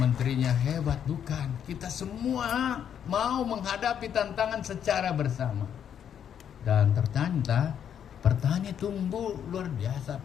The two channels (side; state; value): right; quieter; 8.8 dB